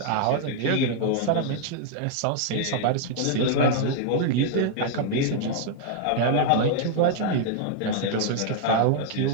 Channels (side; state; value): both; different; correlation -0.01